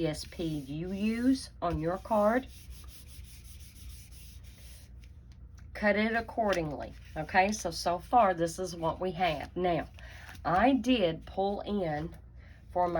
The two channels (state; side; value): identical; both; correlation 1.00